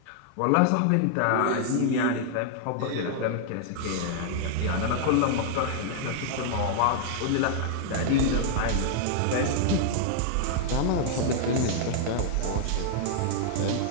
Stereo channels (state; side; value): different; both; correlation -0.01